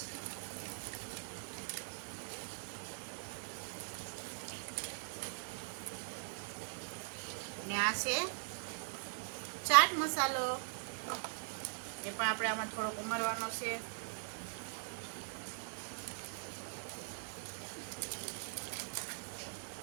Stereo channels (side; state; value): left; silent; digital silence